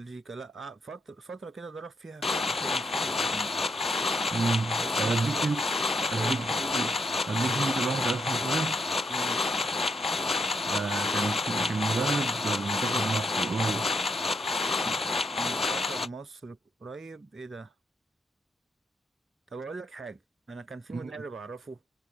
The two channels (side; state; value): both; normal; correlation 0.77